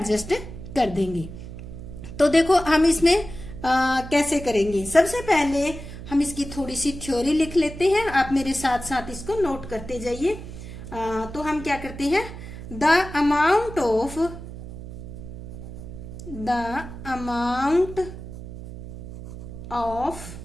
कर देंगे। तो देखो हम इसमें कैसे करेंगे। सबसे पहले हम इसकी थोड़ी सी थ्योरी लिख लेते हैं, आप मेरे साथ साथ इसको नोट करते जाइए। तो हम क्या करते हैं, the amount of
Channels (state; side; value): noise; right; hum, 11 dB below the sound